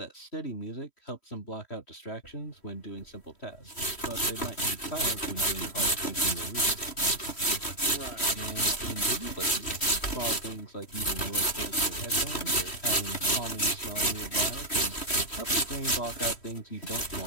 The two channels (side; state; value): right; late; 3.1 ms